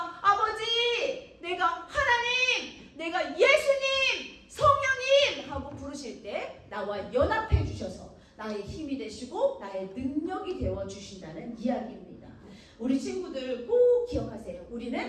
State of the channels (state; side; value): identical; both; correlation 1.00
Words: 아버지, 내가 하나님, 내가 예수님, 성령님 하고 부르실 때 나와 연합해 주셔서 나의 힘이 되시고 나의 능력이 되어주신다는 이야기입니다. 우리 친구들 꼭 기억하세요.